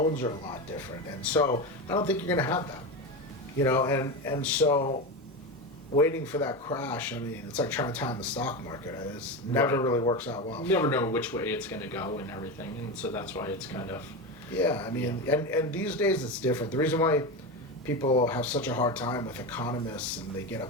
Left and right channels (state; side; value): normal; both; correlation 0.19